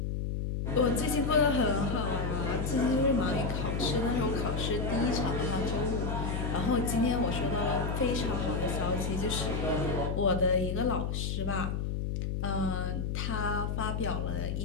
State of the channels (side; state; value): left; noise; hum, 1 dB below the sound